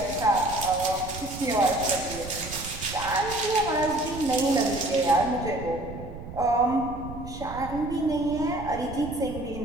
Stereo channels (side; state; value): right; noise; rumble, 11 dB below the sound